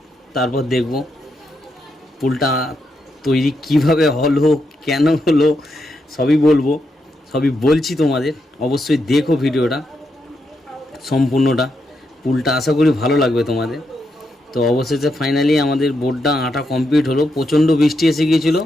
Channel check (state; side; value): normal; both; correlation 0.82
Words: তারপর দেখব পুলটা তৈরি কিভাবে হলো, কেন হলো, সবই বলবো, সবই বলছি তোমাদের। অবশ্যই দেখো ভিডিওটা সম্পূর্ণটা, পুলটা আশা করি ভালো লাগবে তোমাদের। তো অবশেষে ফাইনালি আমাদের বোর্ডটা আটা কমপ্লিট হলো। প্রচণ্ড বৃষ্টি এসে গিয়েছিলো,